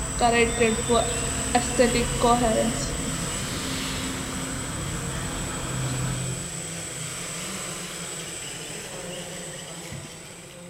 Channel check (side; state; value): both; identical; correlation 1.00